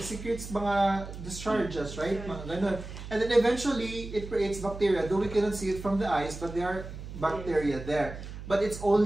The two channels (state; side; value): noise; right; hum, 11 dB below the sound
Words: secretes mga discharges, right? Mga ganun. And then eventually, it creates bacteria, though we cannot see it from the eyes, but there are bacteria there. But it's